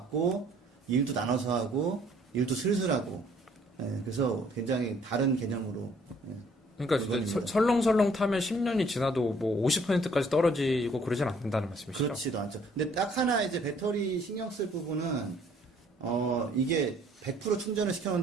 일도 나눠서 하고 일도 슬슬 하고 그래서 굉장히 다른 개념으로 그러니까 이제 물건입니다. 설렁설렁 타면 10년이 지나도 뭐 50%까지 떨어지고 그러진 않는다는 말씀이시죠? 그렇지도 않죠. 근데 딱 하나 이제 배터리 신경 쓸 부분은 이게 100% 충전을 시켜놓은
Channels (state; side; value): normal; both; correlation 0.60